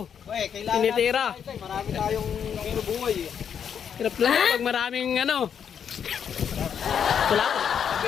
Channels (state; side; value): quieter; right; 7.9 dB